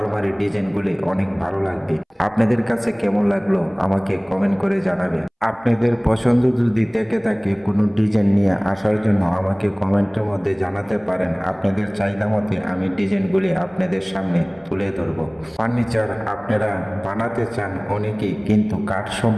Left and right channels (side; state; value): both; identical; correlation 1.00